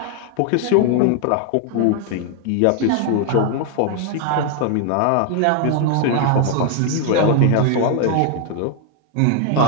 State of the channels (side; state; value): both; different; correlation 0.00